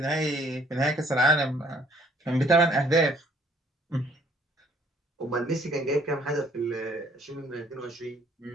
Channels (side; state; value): both; normal; correlation 0.61